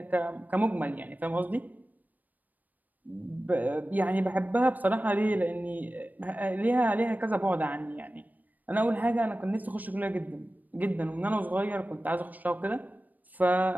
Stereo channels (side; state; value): left; late; 0.083 ms